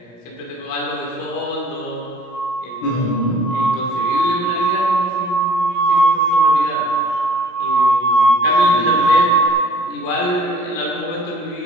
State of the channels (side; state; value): right; late; 16 ms